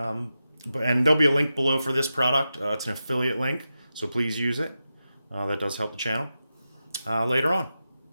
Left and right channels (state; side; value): inverted; both; correlation -0.91